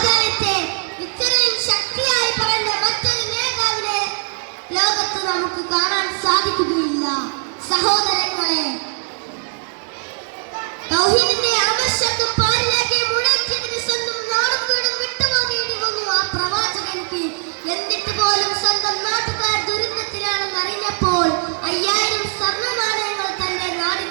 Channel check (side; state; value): left; silent; 66 dB below the other